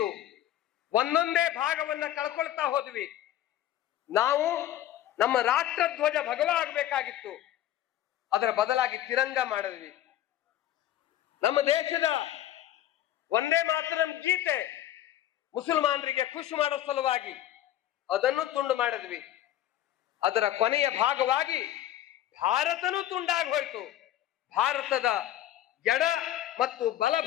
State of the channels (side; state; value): right; quieter; 12.6 dB